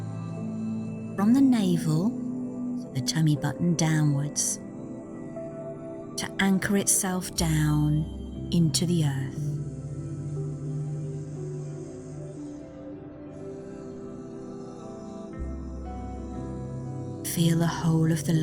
from the navel, so the tummy button downwards, to anchor itself down into the earth. Feel the whole of the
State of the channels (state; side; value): identical; both; correlation 1.00